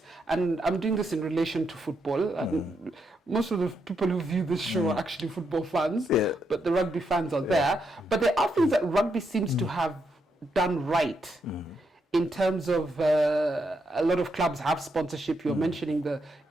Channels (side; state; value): both; normal; correlation 0.80